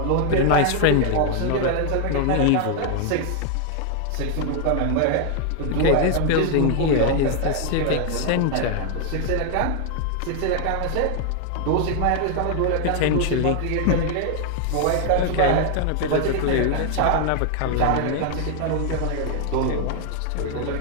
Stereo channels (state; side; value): different; both; correlation 0.00